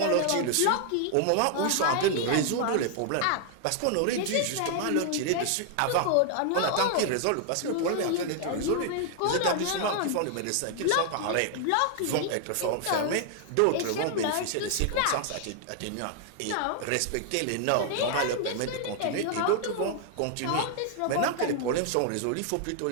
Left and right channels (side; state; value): both; different; correlation 0.00